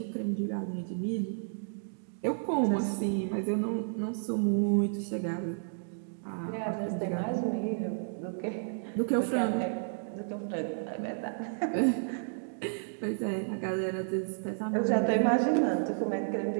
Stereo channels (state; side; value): silent; left; digital silence